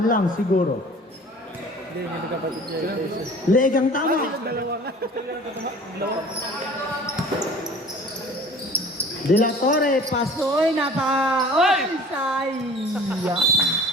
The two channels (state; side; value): normal; both; correlation 0.46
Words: lang siguro. Hindi, hindi nagkapatid niya. Legang tama. De La Torre, pasoy, Oy, sayang.